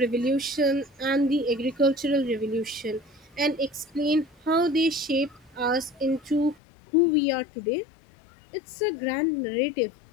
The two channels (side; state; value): right; drops out; at 6.6 s